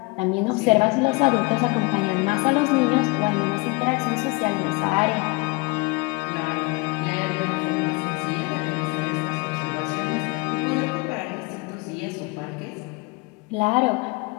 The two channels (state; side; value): quieter; right; 26.5 dB